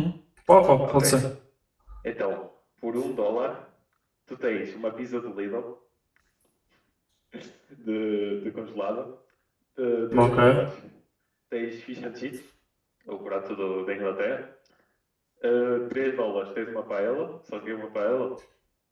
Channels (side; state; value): both; identical; correlation 1.00